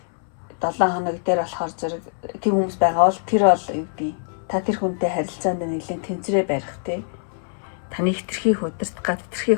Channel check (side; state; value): right; silent; 61 dB below the other